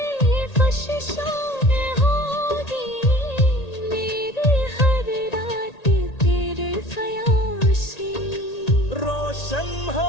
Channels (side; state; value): right; late; 1.8 ms